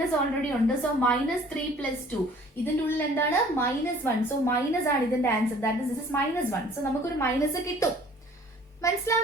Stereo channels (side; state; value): both; normal; correlation 0.53